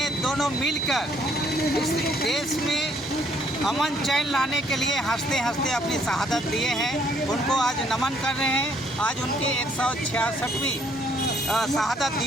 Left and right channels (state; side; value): normal; both; correlation 0.66